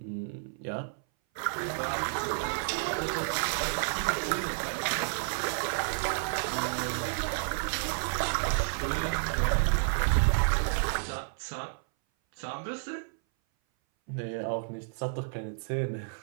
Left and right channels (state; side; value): silent; left; 57 dB below the other